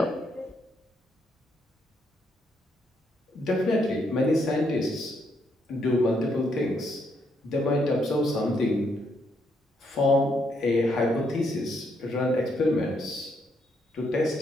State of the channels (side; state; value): both; normal; correlation 0.75